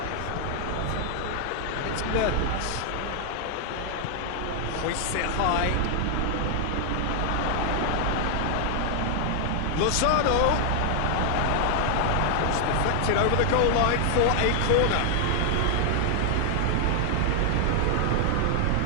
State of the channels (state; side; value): different; both; correlation 0.00